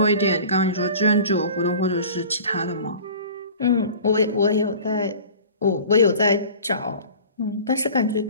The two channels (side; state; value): both; inverted; correlation -0.42